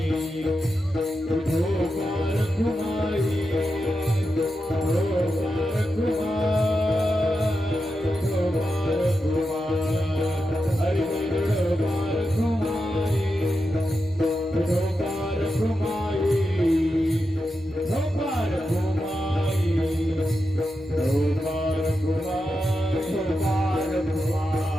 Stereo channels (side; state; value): both; normal; correlation 0.89